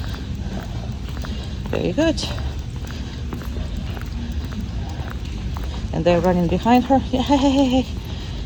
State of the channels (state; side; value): identical; both; correlation 1.00